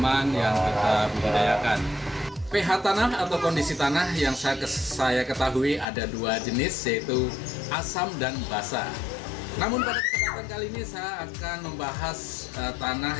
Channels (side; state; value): right; drops out; at 5.9 s